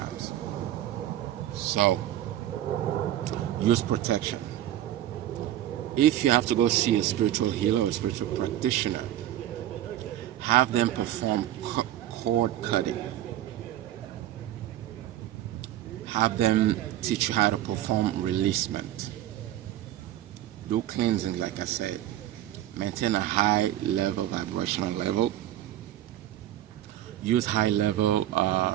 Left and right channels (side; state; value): left; quieter; 13.0 dB